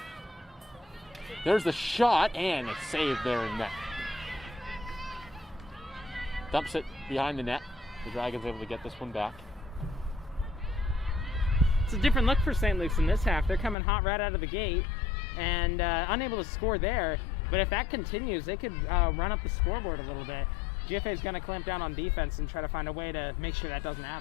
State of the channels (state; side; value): drops out; right; at 13.8 s